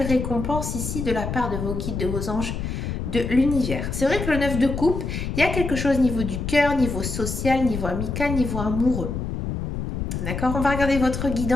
récompense ici de la part de vos guides, de vos anges, de l'univers. C'est vrai que le 9 de coupe, il y a quelque chose au niveau du cœur, niveau social, niveau amical, niveau amoureux. D'accord? On va regarder votre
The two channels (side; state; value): left; noise; rumble, 4 dB below the sound